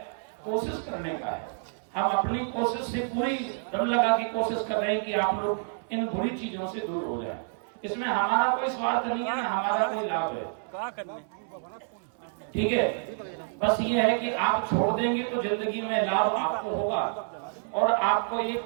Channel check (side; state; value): left; silent; 59 dB below the other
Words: कोशिश करने का है। हम अपनी कोशिश से पूरी दम लगा के कोशिश कर रहे हैं कि आप लोग इन बुरी चीजों से दूर हो जाएं। इसमें हमारा कोई स्वार्थ नहीं है, हमारा कोई लाभ है। क्या करने? ठीक है, बस ये है कि आप छोड़ देंगे तो जिंदगी में लाभ आपको होगा। और आपको